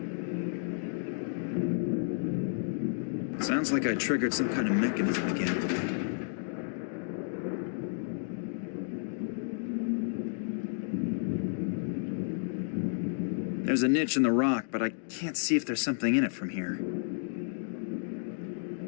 Sounds like I triggered some kind of mechanism again. There's a niche in the rock, but I can't see if there's something in it from here.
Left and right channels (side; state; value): right; silent; digital silence